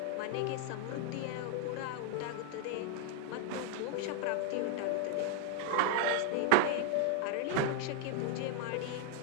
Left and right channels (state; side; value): different; both; correlation 0.00